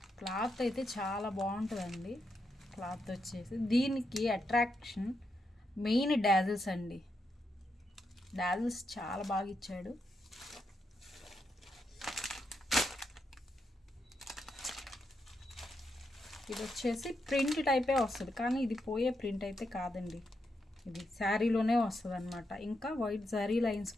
క్లాత్ అయితే చాలా బాగుంటుందండి. క్లాత్ వచ్చేసి దీనికి అట్రాక్షన్ మెయిన్ డాజిల్స్ అండి. డాజిల్స్ చాలా బాగా ఇచ్చాడు. ఇది వచ్చేసి ప్రింట్ టైపే వస్తుంది, కానీ ఇది పోయే ప్రింట్ అయితే కాదండి. ఇది శారీలోనే వస్తుంది అనమాట. ఇంకా వైట్ జరీ లైన్స్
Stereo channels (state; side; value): normal; both; correlation 0.83